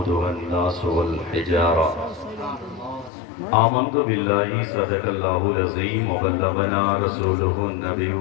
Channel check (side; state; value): right; drops out; at 3.1 s